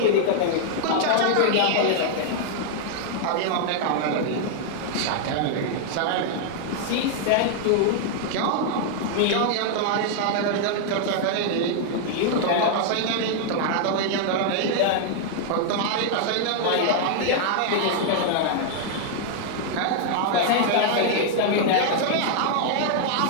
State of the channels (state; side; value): different; both; correlation -0.01